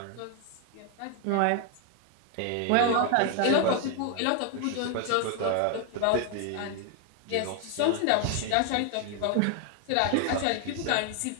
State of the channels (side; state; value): both; different; correlation 0.00